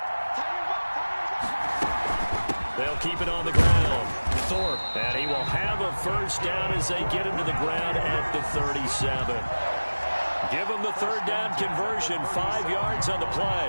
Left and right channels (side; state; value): both; inverted; correlation -1.00